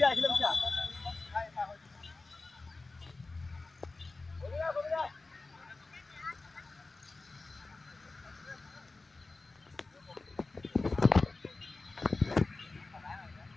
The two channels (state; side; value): quieter; right; 3.5 dB